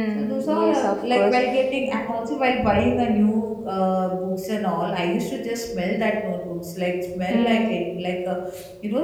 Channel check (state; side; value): identical; both; correlation 1.00